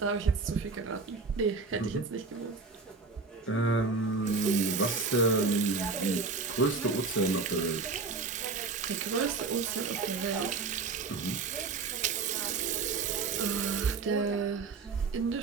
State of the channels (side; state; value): left; quieter; 4.3 dB